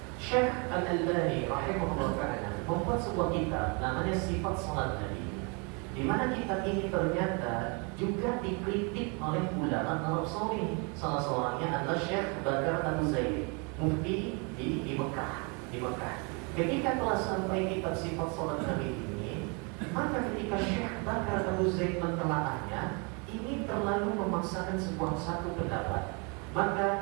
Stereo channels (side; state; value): left; quieter; 33.1 dB